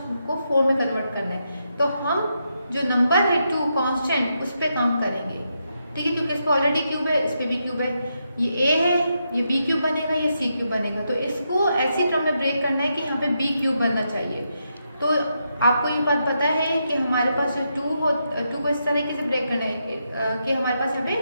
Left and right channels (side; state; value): both; inverted; correlation -0.83